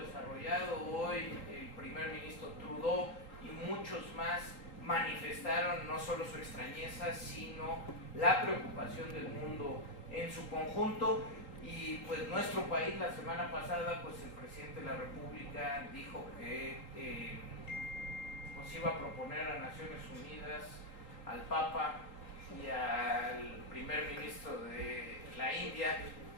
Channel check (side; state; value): right; late; 3.8 ms